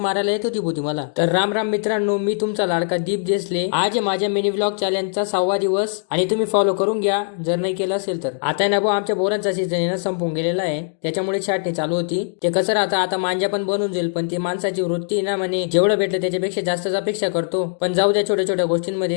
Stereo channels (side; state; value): right; silent; digital silence